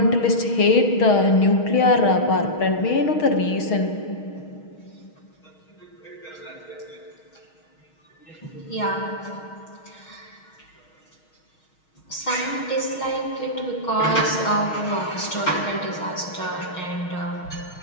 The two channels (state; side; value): late; right; 6.4 ms